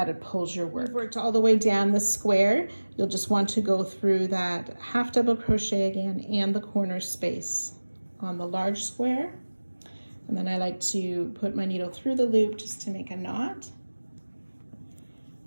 it pulls your work. You've worked all the way down the square. You'll just want to go through that half double crochet again and the corner space on the large square. And then I like to put my needle through the loop just to make a knot.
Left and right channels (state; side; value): inverted; both; correlation -1.00